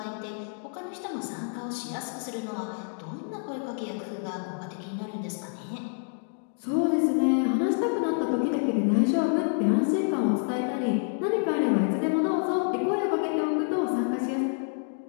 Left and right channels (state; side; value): silent; right; 59 dB below the other